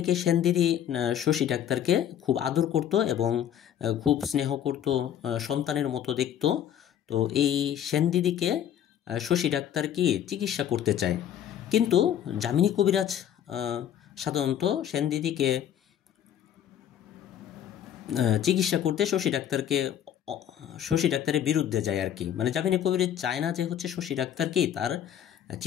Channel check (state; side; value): quieter; right; 10.1 dB